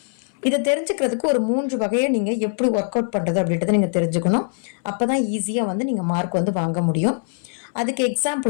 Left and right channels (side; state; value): right; silent; 64 dB below the other